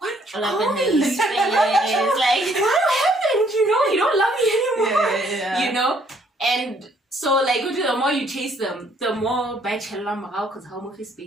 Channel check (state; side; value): normal; both; correlation 0.65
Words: call me? Like, what happened? You don't love me anymore. And so like the more you chase them, the more because how much is